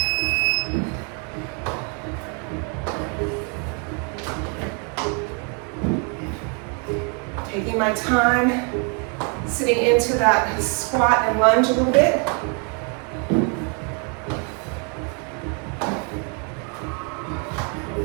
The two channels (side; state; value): left; quieter; 37.4 dB